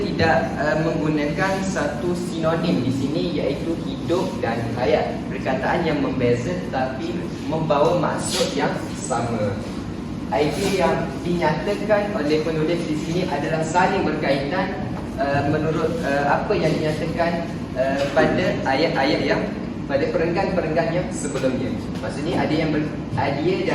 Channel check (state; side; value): identical; both; correlation 1.00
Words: menggunakan satu sinonim di sini, iaitu hidup dan hayat. Perkataan yang membeza tetapi membawa maksud yang sama. Idea yang dinyatakan oleh penulis di sini adalah saling berkaitan menurut apa yang dinyatakan pada ayat-ayat yang pada perenggan-perenggan yang sebelumnya. Maksudnya ada